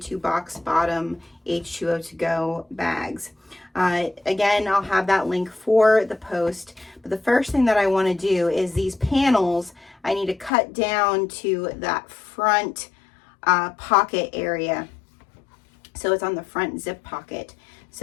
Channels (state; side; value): drops out; right; at 10.5 s